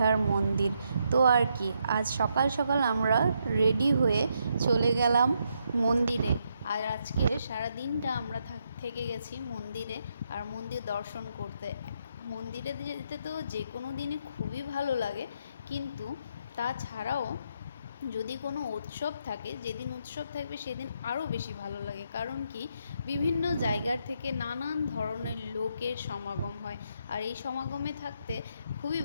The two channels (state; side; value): inverted; both; correlation -0.77